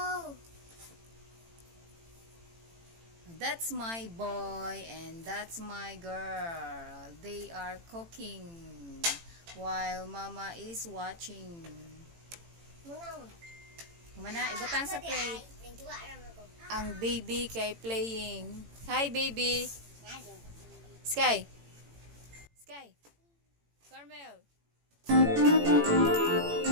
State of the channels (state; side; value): late; left; 18 ms